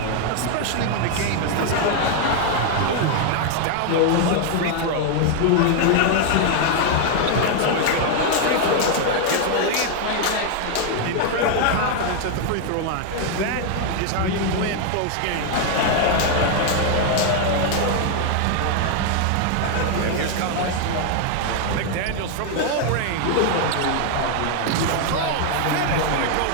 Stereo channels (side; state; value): both; different; correlation 0.00